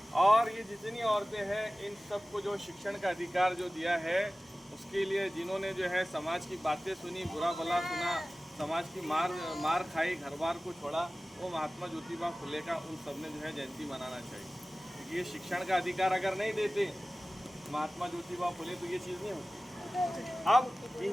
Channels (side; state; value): both; normal; correlation 0.97